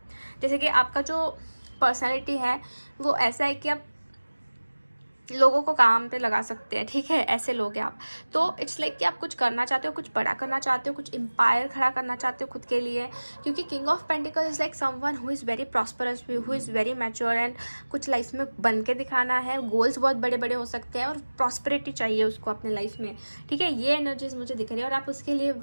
जैसे कि आपका जो पर्सनैलिटी है वो ऐसा है कि आप लोगों को काम पे लगा सकते हैं। ठीक है, ऐसे लोग हैं आप। तो इट्स लाइक कि आप कुछ करना चाहते हो, कुछ बड़ा करना चाहते हो, कुछ एम्पायर खड़ा करना चाहते हो खुद के लिए, क्योंकि king of pentacles is like someone who is very prosperous, who is very mature and कुछ लाइफ में बन के दिखाना है। गोल्स बहुत बड़े बड़े हो सकते हैं और प्रॉस्पेरिटी चाहिए उसको अपने लाइफ में। ठीक है, ये एनर्जीज मुझे दिख रही है और आप उसके लिए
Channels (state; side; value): inverted; both; correlation -1.00